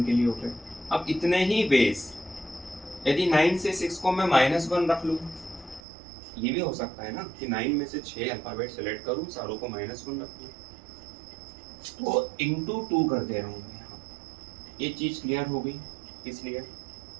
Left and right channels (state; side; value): drops out; left; at 5.8 s